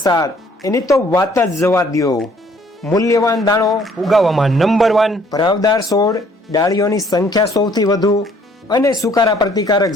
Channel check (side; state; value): both; normal; correlation 0.61